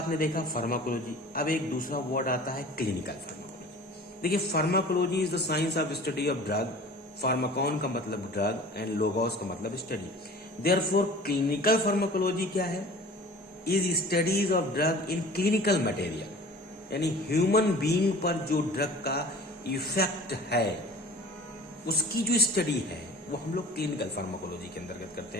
देखा फार्माकोलॉजी, अब एक दूसरा वर्ड आता है क्लिनिकल फार्माकोलॉजी। देखिए pharmacology is the science of study of drug, Pharmacon का मतलब ड्रग एंड लोगोस का मतलब स्टडी। देयरफॉर क्लिनिकल फार्माकोलॉजी क्या है? Is studies of drug in clinical material, यानी ह्यूमन बीइंग पर जो ड्रग का इफेक्ट है उसकी जो स्टडी है वो हम लोग क्लिनिकल फार्माकोलॉजी के अंतर्गत करते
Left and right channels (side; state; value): both; normal; correlation 0.43